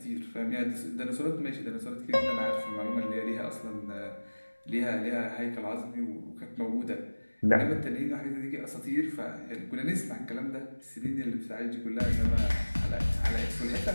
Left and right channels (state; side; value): inverted; both; correlation -1.00